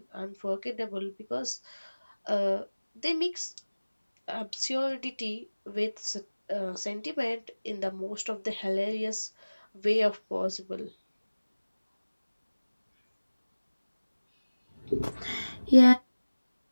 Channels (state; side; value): inverted; both; correlation -1.00